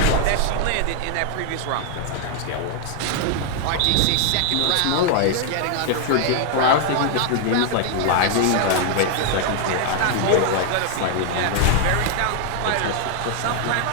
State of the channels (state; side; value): different; both; correlation 0.00